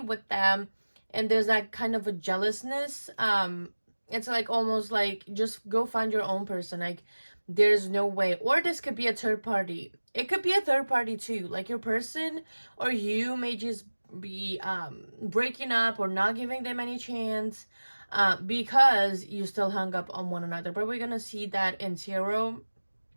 them, and there's that kind of a jealousness. It's like almost like, just go find your own person. Like, there's no way. Or this could be a third party. It could be a third party too, like your person or you may just be breaking up or not giving them any chance, because you still hung up on one another. But we're gonna see that in tarot,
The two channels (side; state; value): both; inverted; correlation -1.00